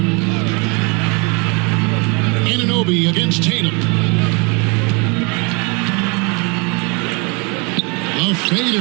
Nnbvm against Tatum. A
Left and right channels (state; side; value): quieter; left; 30.4 dB